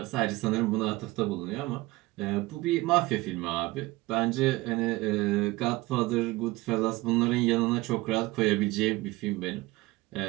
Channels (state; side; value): quieter; left; 20.6 dB